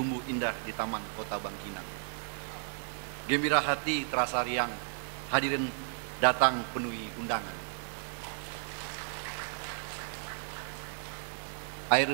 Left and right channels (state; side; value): silent; left; digital silence